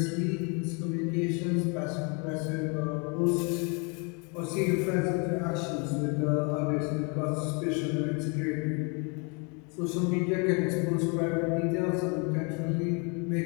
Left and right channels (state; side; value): quieter; right; 33.8 dB